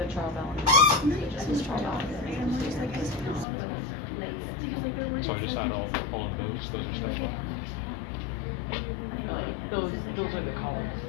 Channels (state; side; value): drops out; right; at 3.5 s